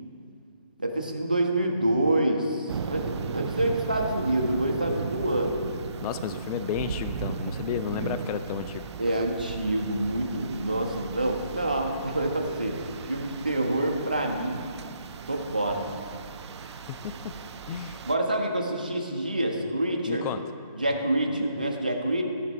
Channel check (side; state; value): both; inverted; correlation -0.72